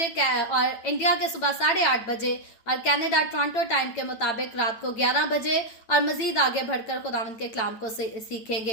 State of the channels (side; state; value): right; late; 9.0 ms